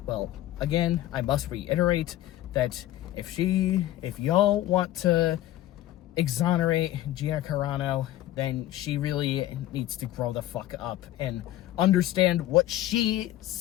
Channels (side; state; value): right; quieter; 14.2 dB